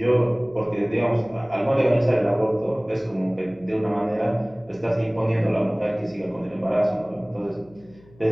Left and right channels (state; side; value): noise; left; hum, 26 dB below the sound